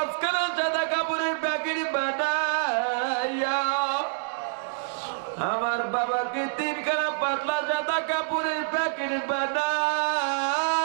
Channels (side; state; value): left; silent; digital silence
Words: সাদা কাপড়ের প্যাকেট বানাইয়া, আমার বাবাকে 3খানা পাতলা সাদা কাপড়ের প্যাকেট